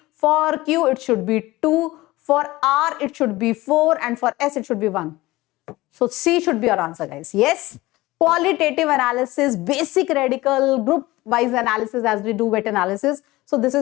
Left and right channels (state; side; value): quieter; right; 19.1 dB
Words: For Q, it should be 2. For R, it should be 4. And for S, it should be 1. So C should be our answer, guys. Yes. Qualitative analysis, basic radical, group wise analysis as we do wet analysis. So this